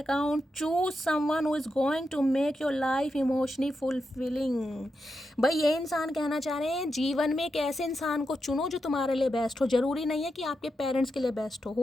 Choose someone who is going to make your life emotionally fulfilling. भाई ये इंसान कहना चाह रहे हैं जीवन में एक ऐसे इंसान को चुनो जो तुम्हारे लिए बेस्ट हो। जरूरी नहीं है कि आपके पेरेंट्स के लिए बेस्ट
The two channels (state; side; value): normal; both; correlation 0.86